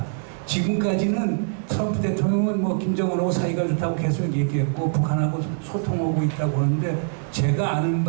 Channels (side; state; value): left; silent; digital silence